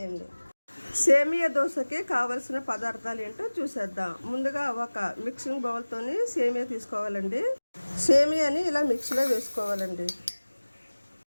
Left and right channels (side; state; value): both; inverted; correlation -1.00